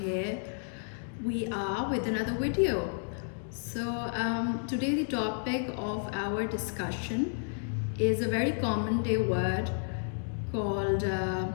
here we are with another video. Today the topic of our discussion is a very common day word called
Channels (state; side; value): silent; right; digital silence